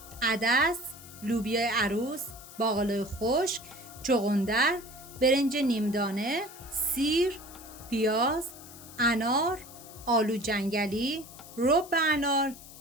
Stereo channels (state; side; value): noise; left; hiss, 17 dB below the sound